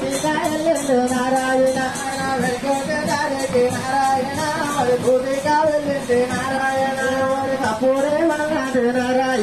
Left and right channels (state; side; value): noise; right; rumble, 23 dB below the sound